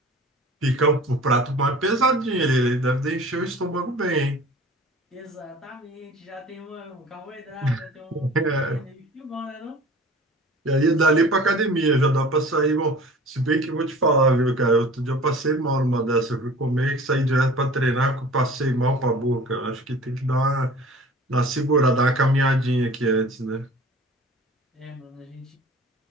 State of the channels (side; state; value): both; normal; correlation 0.43